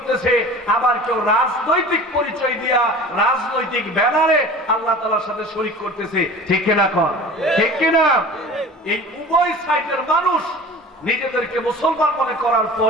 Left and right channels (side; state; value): both; normal; correlation 0.39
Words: আবার কেউ রাজনৈতিক পরিচয় দিয়া, রাজনৈতিক ব্যানারে আল্লাহ তাআলার সাথে শরীক করতেছে। ঠিক কিনা? কর ঠিক কিনা? এই উভয় সাইডের মানুষ নিজেদেরকে মুসলমান মনে করার